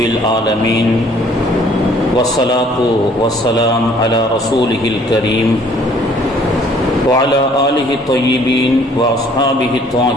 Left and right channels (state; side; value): normal; both; correlation 0.58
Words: العالمين، والصلاة والسلام على رسوله الكريم وعلى آله الطيبين وأصحابه